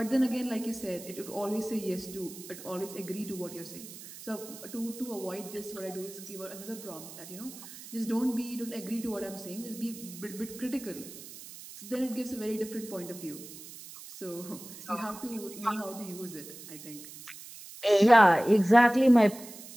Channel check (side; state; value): right; noise; hiss, 15 dB below the sound